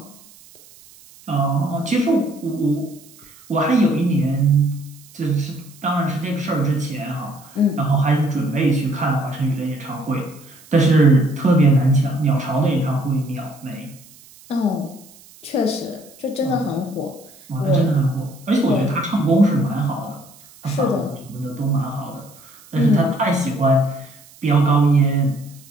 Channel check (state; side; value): noise; right; hiss, 24 dB below the sound